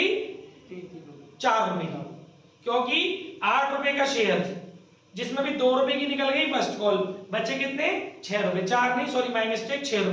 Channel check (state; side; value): identical; both; correlation 1.00